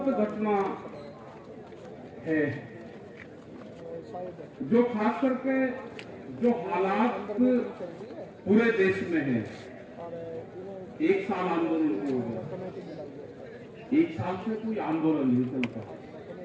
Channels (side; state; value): both; identical; correlation 1.00